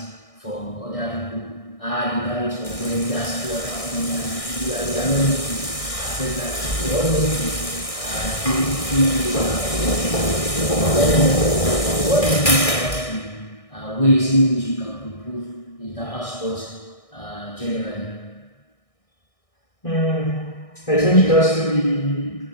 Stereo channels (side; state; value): right; late; 1.6 ms